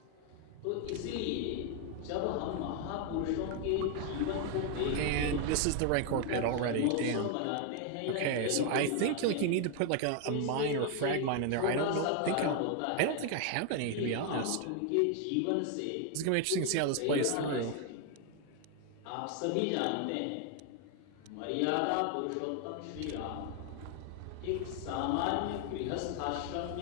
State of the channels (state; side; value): different; both; correlation 0.00